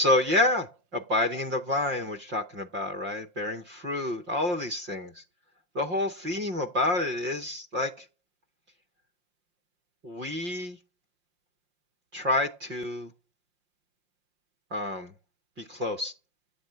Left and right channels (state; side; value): late; left; 5.6 ms